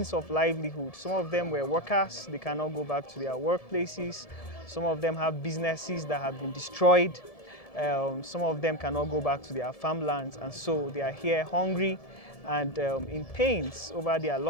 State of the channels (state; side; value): late; right; 1.7 ms